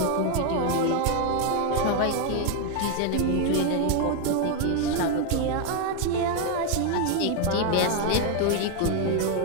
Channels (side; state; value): both; different; correlation 0.01